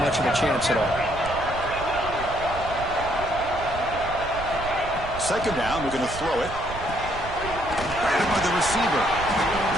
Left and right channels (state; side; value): noise; right; rumble, 11 dB below the sound